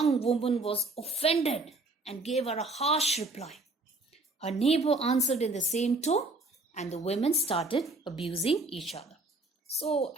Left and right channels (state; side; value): quieter; left; 3.0 dB